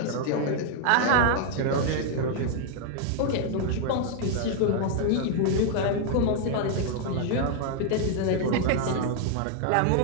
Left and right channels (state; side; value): different; both; correlation 0.00